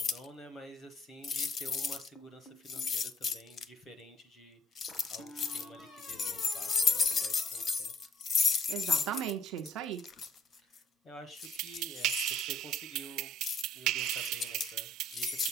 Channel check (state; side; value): normal; both; correlation 0.57